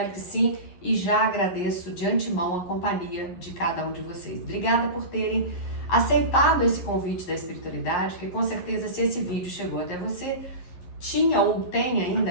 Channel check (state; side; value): late; right; 11 ms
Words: que sim e já agradeço de antemão a companhia de cada um de vocês. Obrigada por terem aceitado esse convite da espiritualidade, porque com certeza se esse vídeo chegou até você, tinha ou tem ainda,